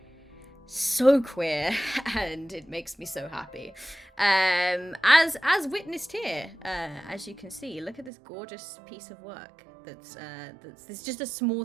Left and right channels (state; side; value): drops out; left; at 8.1 s